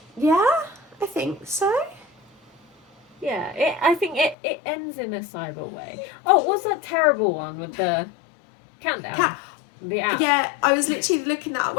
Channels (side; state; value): right; drops out; at 4.4 s